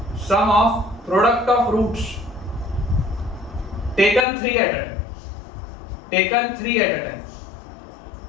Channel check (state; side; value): drops out; right; at 4.2 s